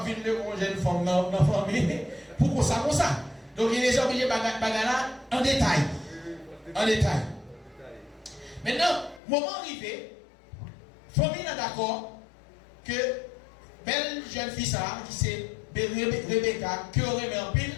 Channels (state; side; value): drops out; right; at 9.2 s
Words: de vivre une jeune femme dans la famille pour ça comme ça. Donc Eliezer a obligé bagala en détail. En détail. Maintenant, moment arrivé, famille est d'accord que belle jeune fille ça, qui c'est Rebecca, qui aurait mis en pile,